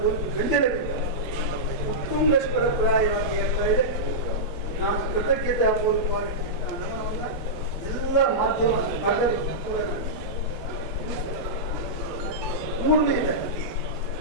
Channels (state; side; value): normal; both; correlation -0.12